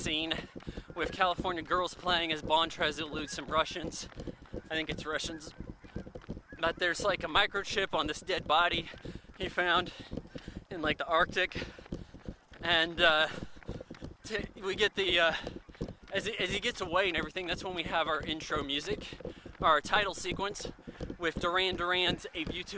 with California girls playing as Bond tries to elude some Russians. I think it's Russians. But there's like a microchip on this dead body he found in like the Arctic. And we get the, as he gets away and everything, that's when we have our intro music, our title sequence with Duran Duran's A View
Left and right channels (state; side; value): identical; both; correlation 1.00